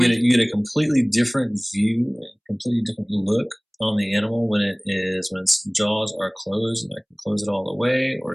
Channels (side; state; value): both; identical; correlation 1.00